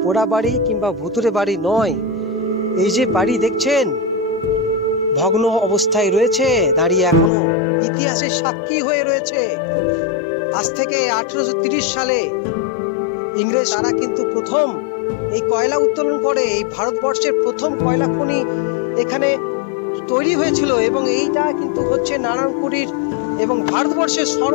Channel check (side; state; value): right; drops out; at 7.3 s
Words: পোড়া বাড়ি কিংবা ভুতুরে বাড়ি নয়। এই যে বাড়ি দেখছেন ভগ্ন অবস্থায় রয়েছে, দাঁড়িয়ে এখনো ইতিহাসের সাক্ষী হয়ে রয়েছে। আজ থেকে 1830 সালে ইংরেজ তারা কিন্তু প্রথম এই কয়লা উত্তোলন করে। এই ভারতবর্ষের প্রথম কয়লা খনি এখানে তৈরি হয়েছিল, এবং এইটা কিন্তু হচ্ছে নারায়ণপুরীর এবং ভারতবর্ষের